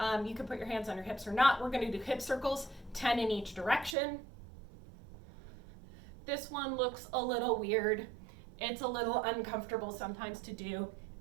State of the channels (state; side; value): drops out; left; at 4.0 s